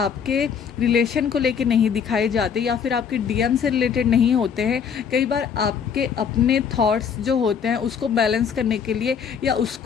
रिलेशन को लेके नहीं दिखाए जाते या फिर आपके डीएम से रिलेटेड नहीं होते हैं। कई बार आपके अपने थॉट्स जो होते हैं उसको बैलेंस करने के लिए या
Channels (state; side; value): quieter; right; 7.1 dB